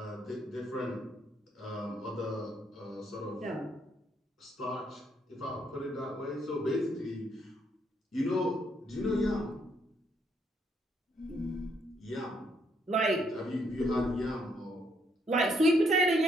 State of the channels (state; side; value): normal; both; correlation 0.72